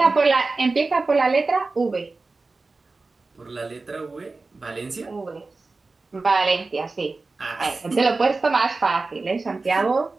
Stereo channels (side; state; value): left; quieter; 3.7 dB